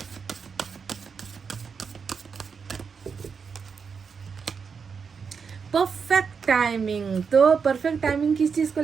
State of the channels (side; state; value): left; quieter; 5.9 dB